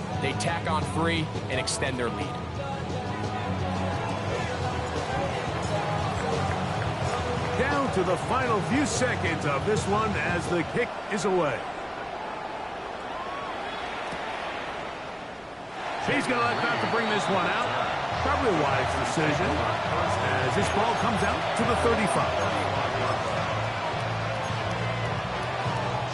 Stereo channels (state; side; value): identical; both; correlation 1.00